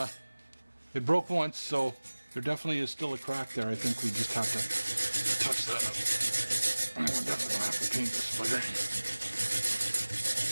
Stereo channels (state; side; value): inverted; both; correlation -1.00